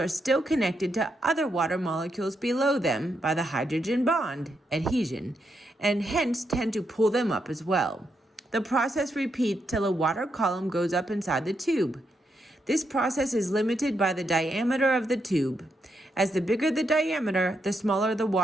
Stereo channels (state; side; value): normal; both; correlation 0.81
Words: still connected to other water molecules below them by the hydrogen bond, adhesion, and hence tend to pull them up as well. The process repeats till a water column goes up inside the tube. This process is limited by the diameter of the tube. As the bigger the diameter, the smaller the